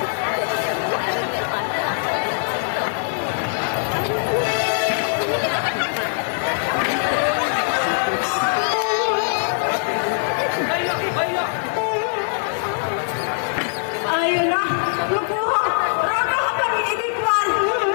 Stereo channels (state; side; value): silent; right; digital silence